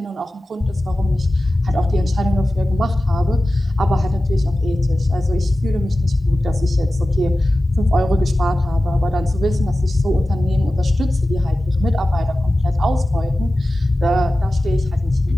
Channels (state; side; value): normal; both; correlation 0.95